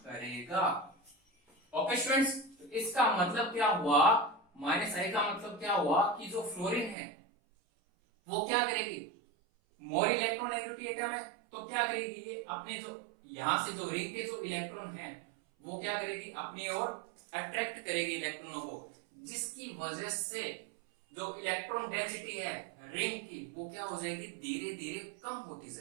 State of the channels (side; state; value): left; drops out; at 7.0 s